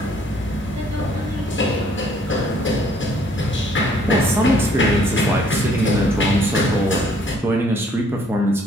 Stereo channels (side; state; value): both; normal; correlation 0.62